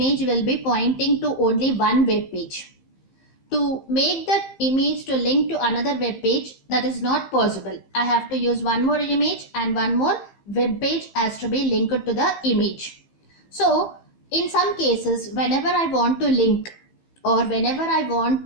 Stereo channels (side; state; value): right; late; 15 ms